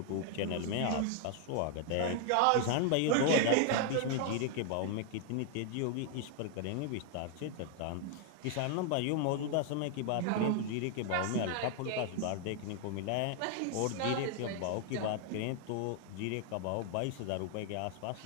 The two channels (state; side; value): different; both; correlation 0.00